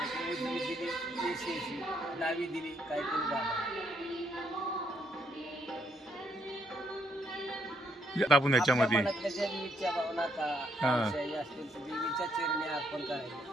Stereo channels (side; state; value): both; normal; correlation 0.73